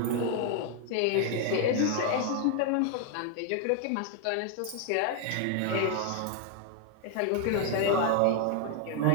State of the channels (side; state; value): both; different; correlation 0.00